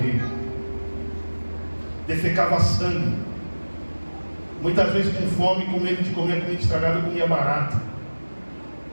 Defecava sangue. Muitas vezes com fome, com medo de comer comida estragada, eu comia barata.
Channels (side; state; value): both; inverted; correlation -1.00